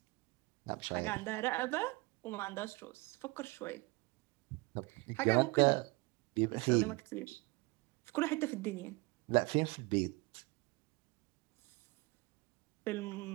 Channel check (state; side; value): quieter; left; 24.4 dB